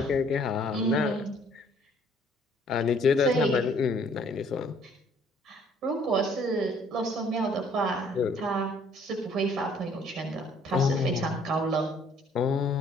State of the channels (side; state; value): both; normal; correlation 0.60